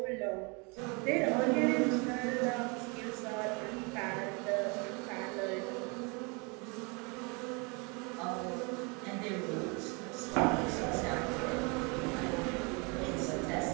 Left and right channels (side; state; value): left; quieter; 30.9 dB